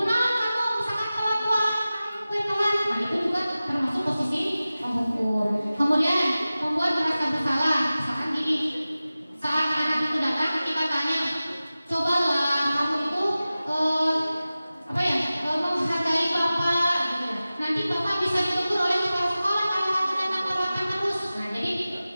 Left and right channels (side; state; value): both; inverted; correlation -0.96